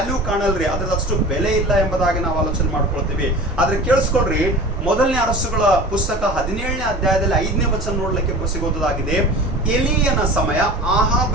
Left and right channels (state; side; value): normal; both; correlation 0.38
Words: ಕಾಣಲ್ರಿ, ಅದ್ರದ್ದು ಅಷ್ಟು ಬೆಲೆ ಇಲ್ಲ ಎಂಬುದಾಗಿ ನಾವು ಆಲೋಚನೆ ಮಾಡ್ಕೊಳ್ತೀವಿ। ಆದ್ರೆ ಕೇಳಿಸ್ಕೊಳ್ರಿ, ಮೊದಲನೇ ಅರಸುಗಳ ಪುಸ್ತಕ 17ನೇ ಅಧ್ಯಾಯದಲ್ಲಿ 5ನೇ ವಚನ ನೋಡ್ಲಿಕ್ಕೆ ಸಿಗೋದಾಗಿದೆ। ಎಲಿಯನ ಸಮಯ,